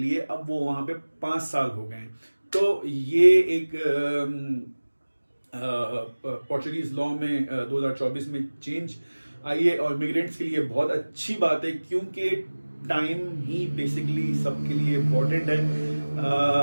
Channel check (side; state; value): both; inverted; correlation -1.00